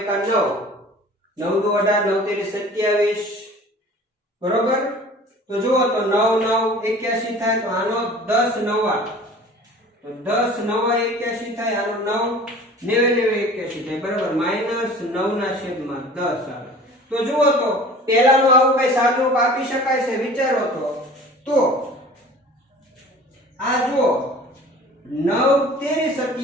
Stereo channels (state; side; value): normal; both; correlation 0.44